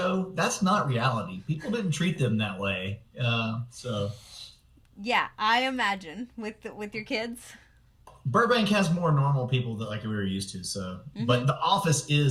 that's not reality. People didn't treat them that way. So Yeah, I imagine with your kids. Burbank has more normal people that like we were used to. So, Mm-hmm. but the office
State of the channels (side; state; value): both; identical; correlation 1.00